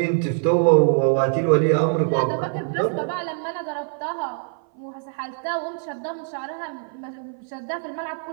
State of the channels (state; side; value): silent; left; 57 dB below the other